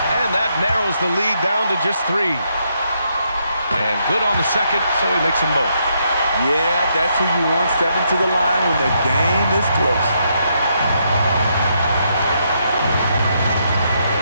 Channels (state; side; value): inverted; both; correlation -0.77